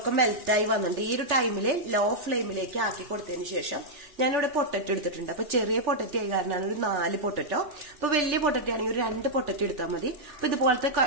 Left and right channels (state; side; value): late; left; 3.4 ms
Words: മെൽറ്റായി വന്നിട്ടുണ്ട്. ഈ ഒരു ടൈമില് ലോ ഫ്ലെയിമിലേക്ക് ആക്കി കൊടുത്തതിന് ശേഷം ഞാനിവിടെ പൊട്ടറ്റോ എടുത്തിട്ടുണ്ട്. അപ്പൊ ചെറിയ പൊട്ടറ്റോ ആയി കാരണമാണ് ഒരു 4 പൊട്ടറ്റോ. അപ്പൊ വലിയ പൊട്ടറ്റോ ആണെങ്കിൽ ഒരു 2 പൊട്ടറ്റോ എടുത്താൽ മതി. അപ്പൊ ഇതുപോലത്തെ